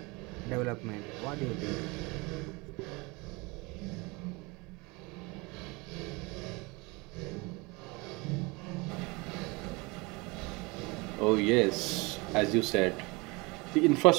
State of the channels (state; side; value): quieter; left; 26.0 dB